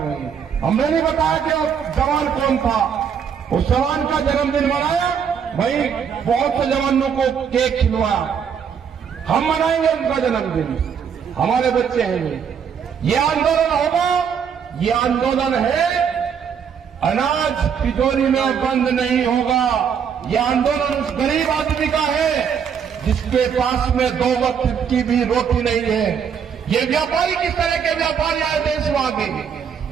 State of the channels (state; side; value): quieter; left; 7.3 dB